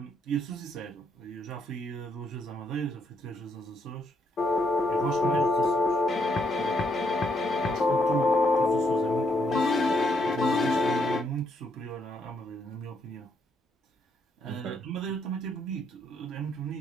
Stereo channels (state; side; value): normal; both; correlation 0.75